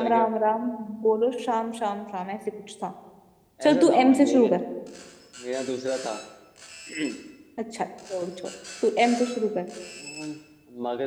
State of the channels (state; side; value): identical; both; correlation 1.00